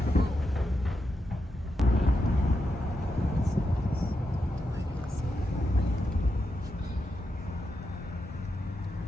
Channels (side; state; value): both; normal; correlation 0.86